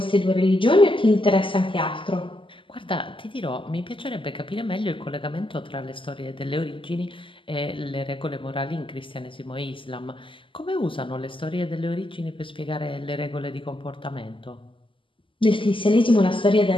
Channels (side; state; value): right; late; 0.25 ms